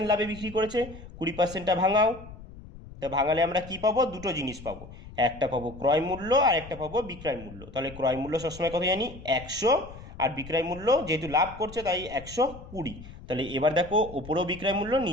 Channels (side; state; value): left; noise; rumble, 16 dB below the sound